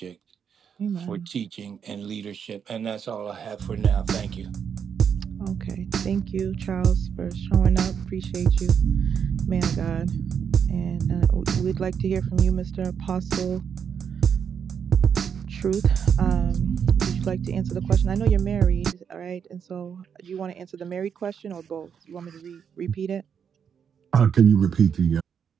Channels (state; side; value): quieter; left; 7.4 dB